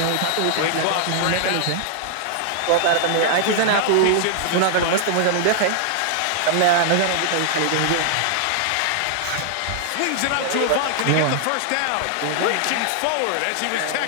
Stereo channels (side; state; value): both; different; correlation 0.00